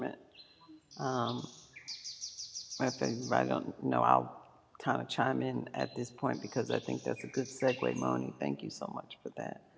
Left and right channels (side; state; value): both; identical; correlation 1.00